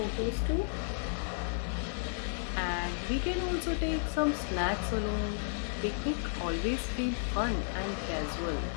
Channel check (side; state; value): right; silent; digital silence